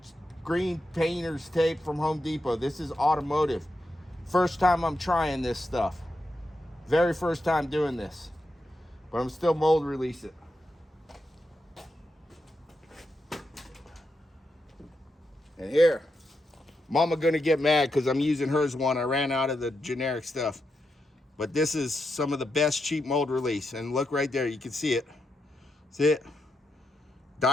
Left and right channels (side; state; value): both; normal; correlation 0.85